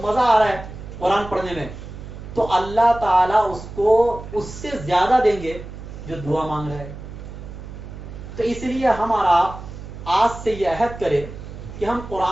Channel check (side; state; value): right; noise; hum, 12 dB below the sound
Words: مزہ آ رہا ہے قرآن پڑھنے میں، تو اللہ تعالیٰ اس کو اس سے زیادہ دیں گے جو دعا مانگ رہا ہے. تو اس لیے ہمارا آج سے یہ عہد کرے کہ ہم